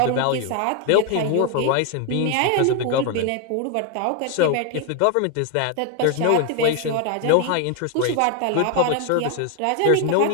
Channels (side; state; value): both; different; correlation 0.01